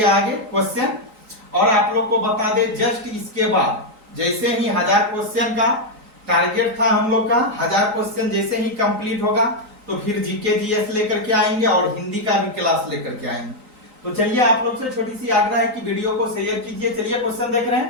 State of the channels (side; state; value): left; late; 3.9 ms